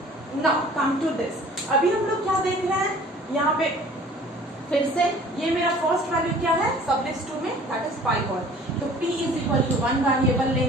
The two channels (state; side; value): normal; both; correlation 0.50